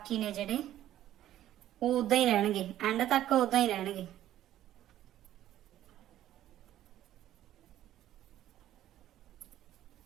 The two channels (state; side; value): quieter; left; 12.7 dB